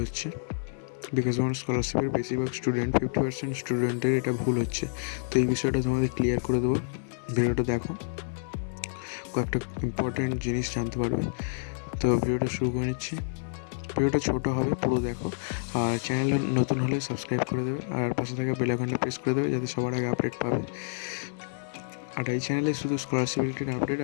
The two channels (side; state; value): right; silent; digital silence